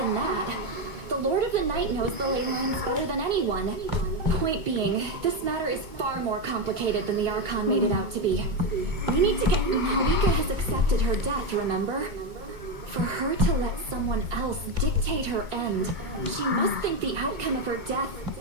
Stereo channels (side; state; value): left; late; 2.2 ms